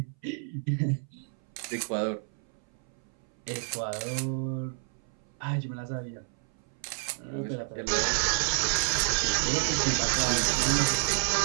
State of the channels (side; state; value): left; silent; 58 dB below the other